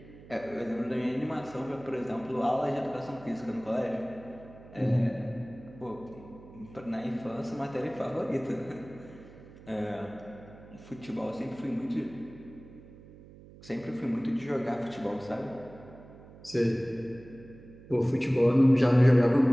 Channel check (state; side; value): noise; right; hum, 20 dB below the sound